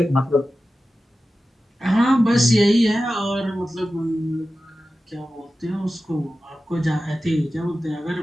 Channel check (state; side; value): normal; both; correlation 0.94